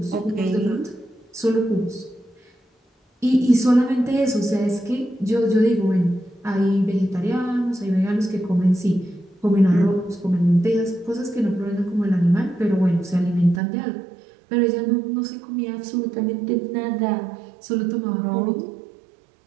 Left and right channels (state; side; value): drops out; left; at 13.6 s